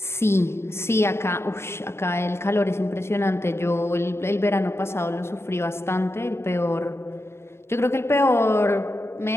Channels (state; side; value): late; right; 0.12 ms